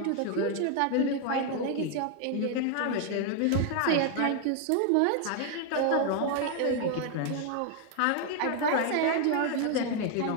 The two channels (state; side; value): different; both; correlation 0.01